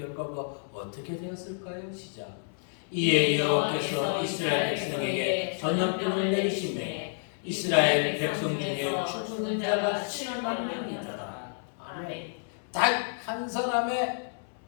어떻게 되었을까요? 시작. 이에 여호와께서 이스라엘 백성에게 전염병을 내리시매 이스라엘 백성 중에 죽은 자가 7만 명이더라. 아멘. 단 한 사람의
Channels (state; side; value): silent; right; 58 dB below the other